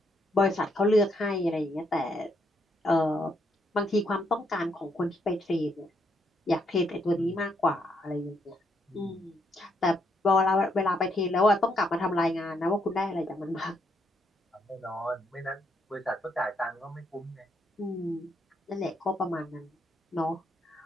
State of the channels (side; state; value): both; normal; correlation 0.75